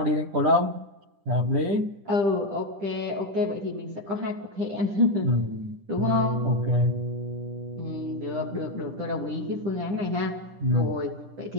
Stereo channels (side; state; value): left; late; 10 ms